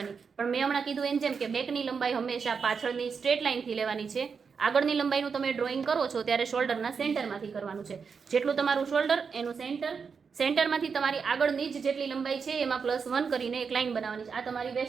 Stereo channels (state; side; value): quieter; left; 5.8 dB